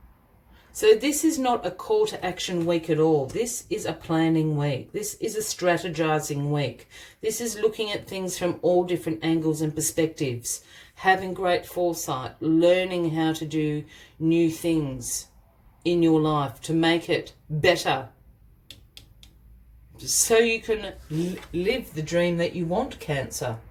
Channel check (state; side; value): identical; both; correlation 1.00